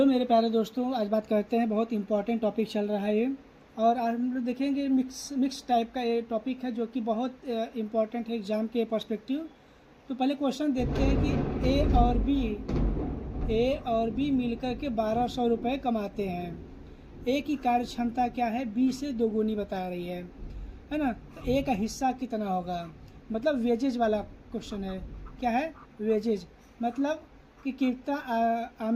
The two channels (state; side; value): identical; both; correlation 1.00